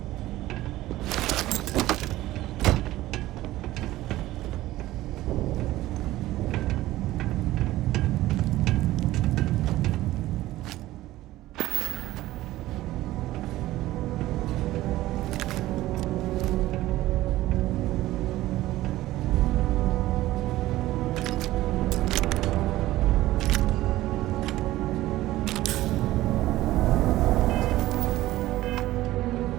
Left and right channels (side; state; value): left; quieter; 16.1 dB